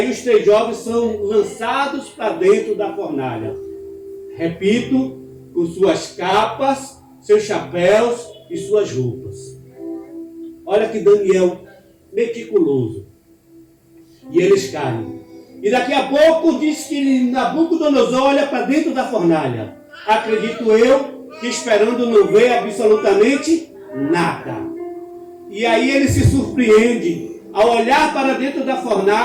os 3 jovens são lançados para dentro da fornalha. Repito, com suas capas, seus chapéus e suas roupas. Olha que Daniel meticuloso. E eles caem. E daqui a pouco diz que Nabucodonosor olha para dentro da fornalha. Acredito eu que esperando não ver absolutamente nada. E aí ele se surpreende ao olhar para dentro da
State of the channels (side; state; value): both; identical; correlation 1.00